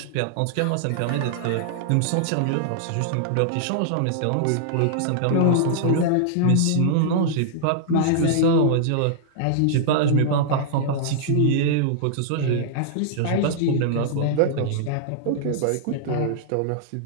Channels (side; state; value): both; different; correlation -0.01